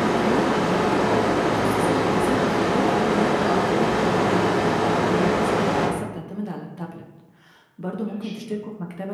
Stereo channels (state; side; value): identical; both; correlation 1.00